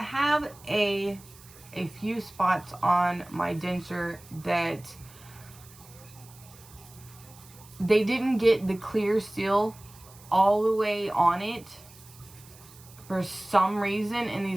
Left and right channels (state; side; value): noise; right; hiss, 22 dB below the sound